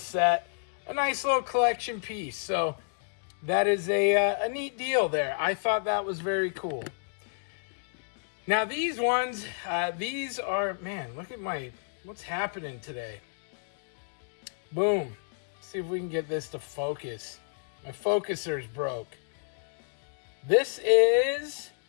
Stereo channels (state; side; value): silent; right; digital silence